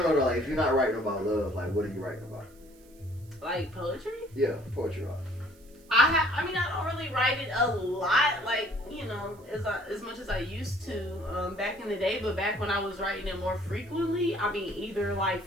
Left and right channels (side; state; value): right; noise; hiss, 28 dB below the sound